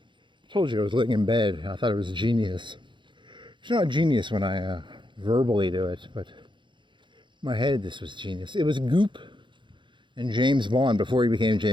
told you I was laying in bed. I thought it was genius. It's not genius when I verbally do it, but in my head this was genius. It was Goop and James Bond before he became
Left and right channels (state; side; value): late; left; 0.23 ms